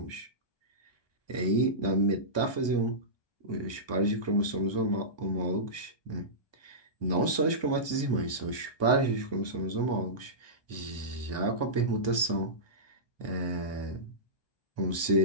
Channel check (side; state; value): right; late; 1.2 ms